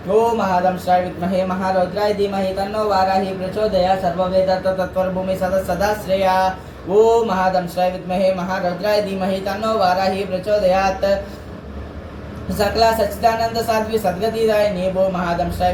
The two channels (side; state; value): both; identical; correlation 1.00